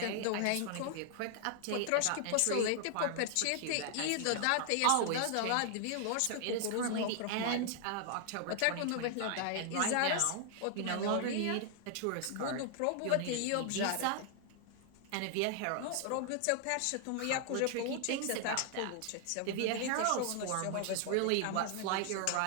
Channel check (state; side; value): different; both; correlation 0.00